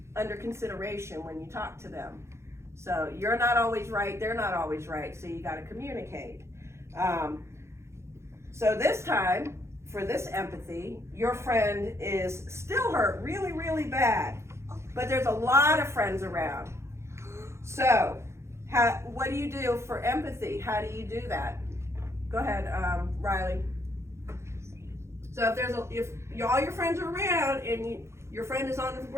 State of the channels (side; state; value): left; late; 0.13 ms